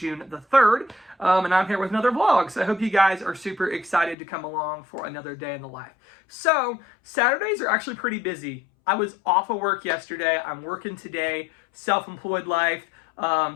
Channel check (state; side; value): drops out; right; at 4.2 s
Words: the 3rd, and I'm here with another vlog. So I hope you guys are super excited to come along for another day in the life. So Saturdays are actually pretty busy. I was off of work yesterday. I'm working today, self-employed life.